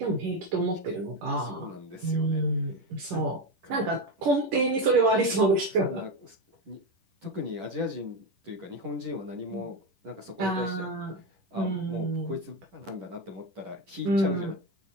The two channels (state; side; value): late; left; 10 ms